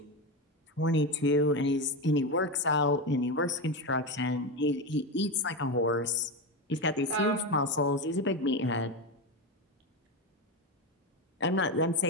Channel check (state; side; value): normal; both; correlation 0.15